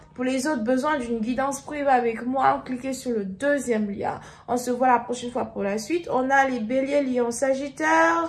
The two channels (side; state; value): both; identical; correlation 1.00